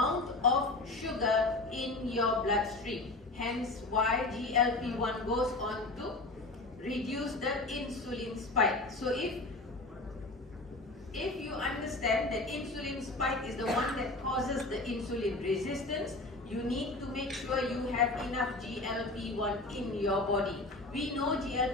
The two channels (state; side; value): quieter; right; 3.0 dB